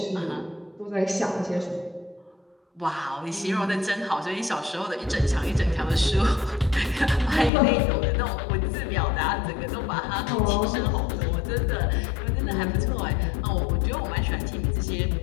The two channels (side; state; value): right; drops out; at 7.5 s